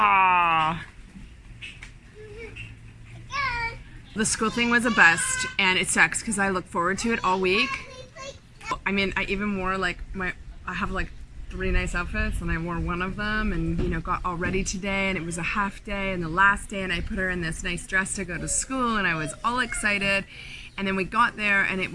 The school thing was a bust, and it sucks because I look forward to it all week. I mean, I even wore like I have like 3 nice outfits, and I wore one of them, and you know, got all ready today, and it was a half day and the last day, and I put her in this nice dress to go to school, and I was all excited. And then we got there, and it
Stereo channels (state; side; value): identical; both; correlation 1.00